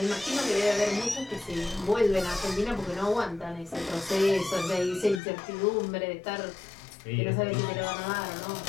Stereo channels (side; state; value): right; drops out; at 5.2 s